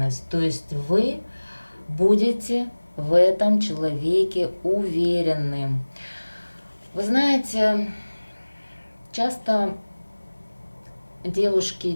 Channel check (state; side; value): inverted; both; correlation -1.00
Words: То есть вы будете в этом человеке уверены. Вы знаете, часто девушки